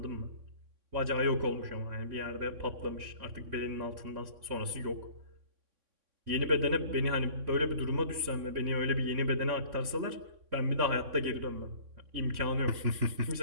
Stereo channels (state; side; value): late; left; 3.6 ms